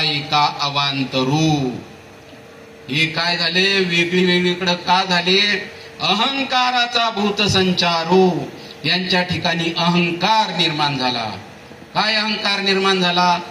एका अवांतरू. हे काय झाले? वेगळीकडं का झाले? अहंकाराचा भूत संचारू. यांच्या ठिकाणी अहंकार निर्माण झाला. काय अहंकार निर्माण झाला?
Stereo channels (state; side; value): identical; both; correlation 1.00